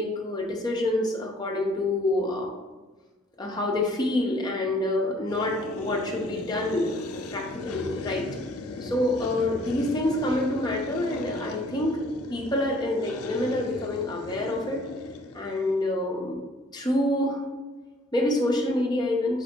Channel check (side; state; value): both; normal; correlation 0.57